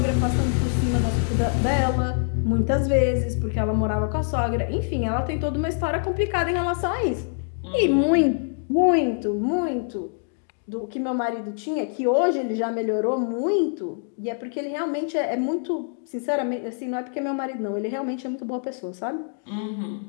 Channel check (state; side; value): silent; right; 62 dB below the other